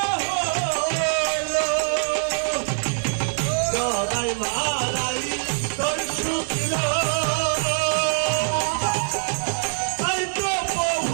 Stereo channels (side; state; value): left; silent; digital silence